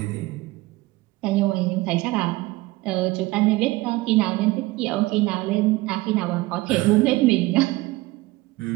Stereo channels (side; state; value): left; quieter; 20.1 dB